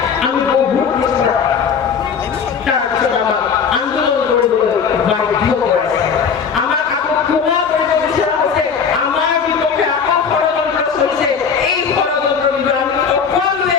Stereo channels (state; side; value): quieter; right; 6.4 dB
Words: আমি বহুত পিছপৰা তাৰপিছত আমাক আন্দোলন কৰিবলৈ বাধ্য কৰাইছে আমাক আকৌ ক্ষমা কৰিব বিচৰা হৈছে আমাৰ বিপক্ষে আকৌ ষড়যন্ত্ৰ চলিছে এই ষড়যন্ত্ৰৰ বিষয়ে আমি সকলোৱে